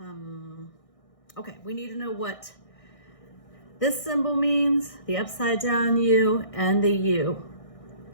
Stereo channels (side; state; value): right; late; 1.6 ms